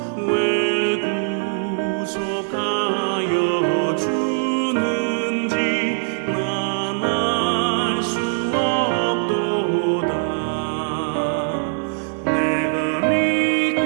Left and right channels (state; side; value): silent; left; digital silence